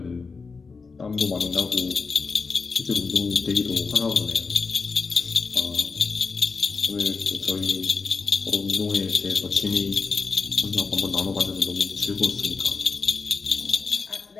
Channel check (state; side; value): quieter; right; 4.7 dB